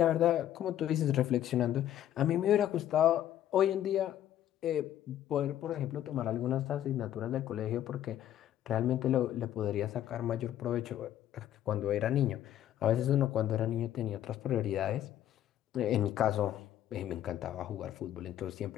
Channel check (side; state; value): right; quieter; 11.7 dB